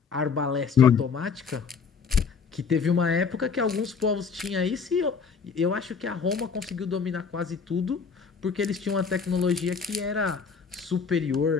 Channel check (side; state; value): right; quieter; 5.7 dB